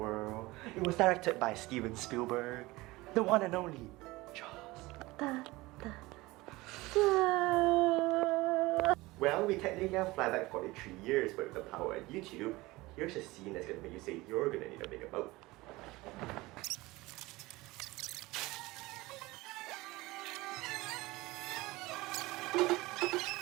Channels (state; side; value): quieter; left; 20.7 dB